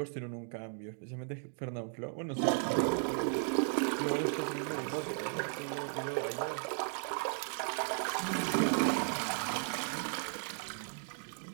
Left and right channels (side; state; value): left; silent; 54 dB below the other